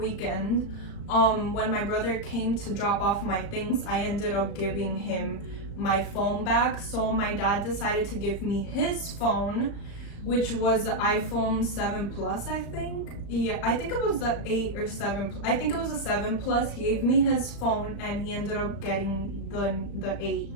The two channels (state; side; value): late; right; 35 ms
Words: when my brother came to drop off my things, I ended up giving him my phone back. So my dad decided to give me his phone, which was the iPhone 7 Plus, I think. Yeah, I think it was the 8 or 7. I think it was a 7 Plus. He gave me his phone and he ended up getting the 8.